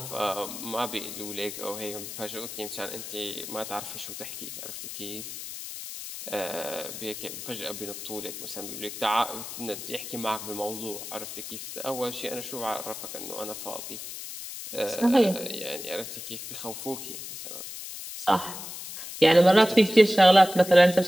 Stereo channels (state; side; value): noise; left; hiss, 9 dB below the sound